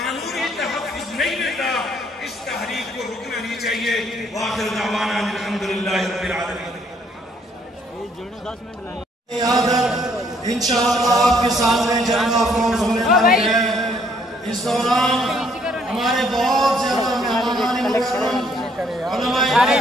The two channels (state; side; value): normal; both; correlation 0.66